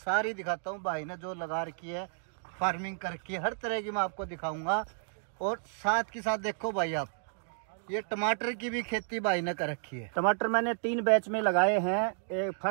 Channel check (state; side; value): silent; left; digital silence